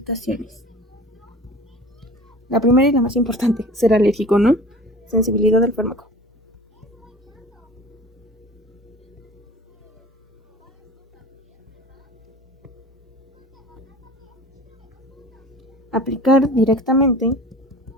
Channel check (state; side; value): normal; both; correlation 0.41